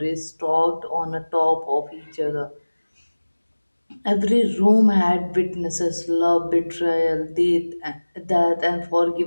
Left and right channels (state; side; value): inverted; both; correlation -1.00